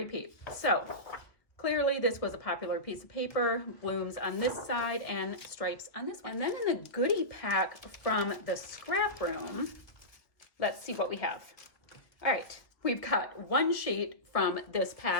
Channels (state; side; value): late; right; 1.2 ms